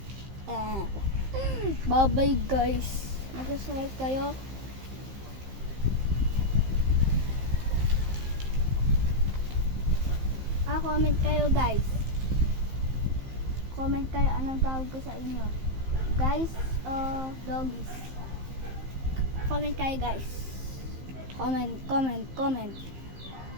Bye-bye guys. Mag-subscribe kayo. Comment kayo guys. Comment kayo anong tawag ko sa inyo. Guys o doggies. Comment kayo guys. Comment. Comment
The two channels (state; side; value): late; left; 15 ms